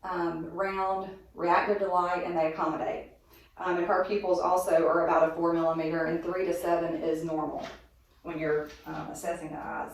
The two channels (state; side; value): identical; both; correlation 1.00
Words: round, reactive to light, and they accommodate. And her pupils also are about a 4 millimeter, and 3 to 7 is normal when you're assessing the